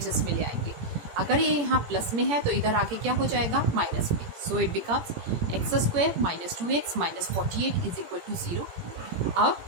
में ले आएंगे। अगर ये यहाँ प्लस में है तो इधर आके क्या हो जाएगा माइनस में। So it becomes x² - 2x - 48 is equal to 0। अब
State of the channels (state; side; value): late; left; 17 ms